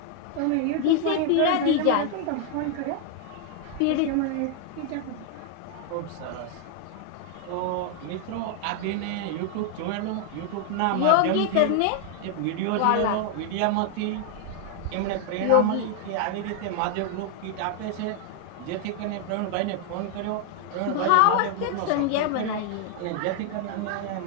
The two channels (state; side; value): different; both; correlation 0.00